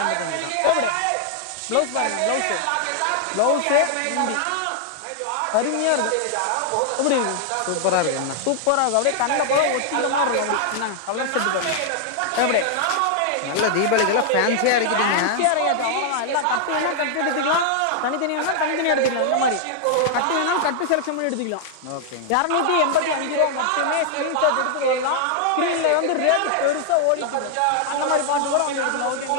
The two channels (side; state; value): both; different; correlation -0.01